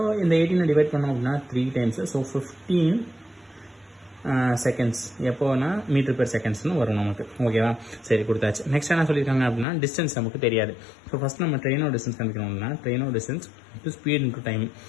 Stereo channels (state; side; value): drops out; right; at 9.7 s